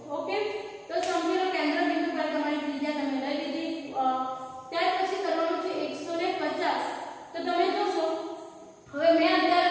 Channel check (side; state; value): both; identical; correlation 1.00